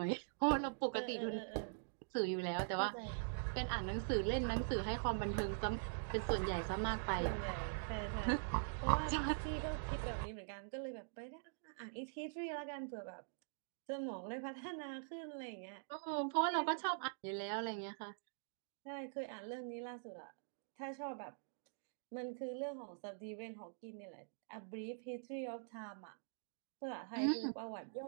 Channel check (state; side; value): silent; left; digital silence